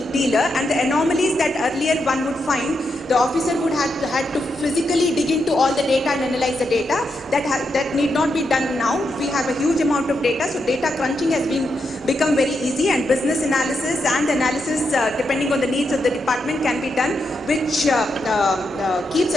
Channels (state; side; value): normal; both; correlation 0.83